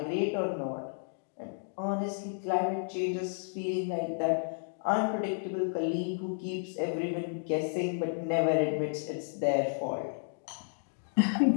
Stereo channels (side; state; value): right; silent; digital silence